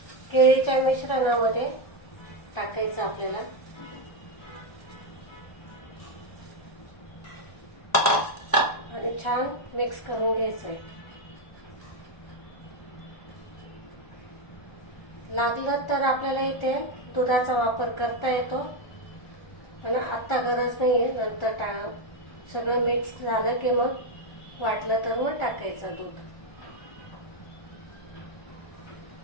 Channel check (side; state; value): right; late; 1.4 ms